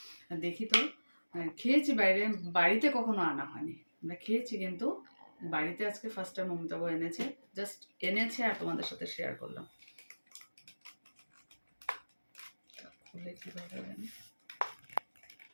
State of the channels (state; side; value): inverted; both; correlation -1.00